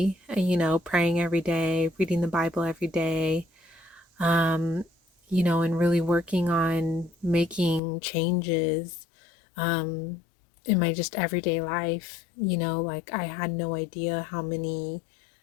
praying every day, reading the Bible every day, um and really working on making changes um in my just everyday life. Like I had no idea how many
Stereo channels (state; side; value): drops out; right; at 7.8 s